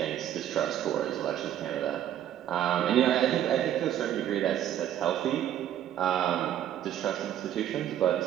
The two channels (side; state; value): left; quieter; 11.2 dB